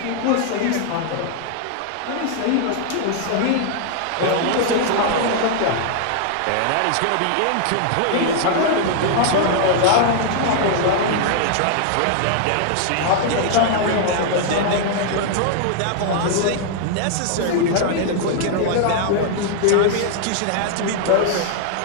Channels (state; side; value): different; both; correlation 0.00